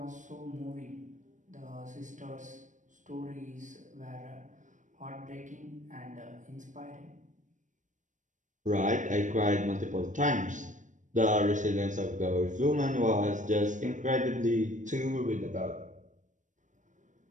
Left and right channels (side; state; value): left; late; 0.36 ms